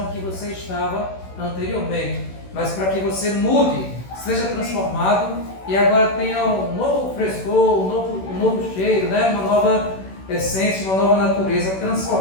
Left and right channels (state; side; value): late; right; 16 ms